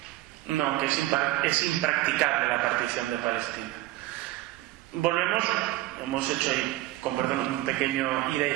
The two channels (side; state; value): left; quieter; 17.2 dB